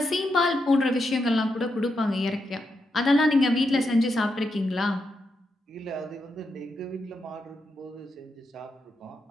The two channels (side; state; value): both; normal; correlation 0.84